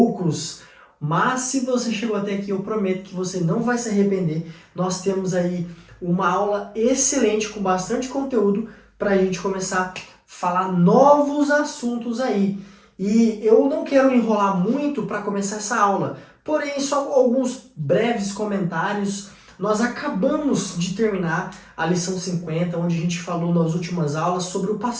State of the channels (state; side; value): identical; both; correlation 1.00